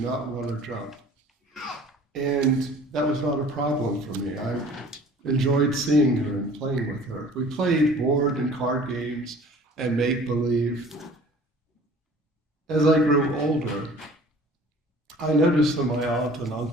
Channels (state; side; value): normal; both; correlation 0.48